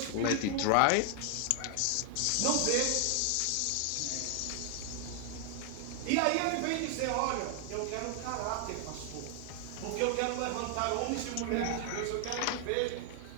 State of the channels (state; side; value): different; both; correlation 0.00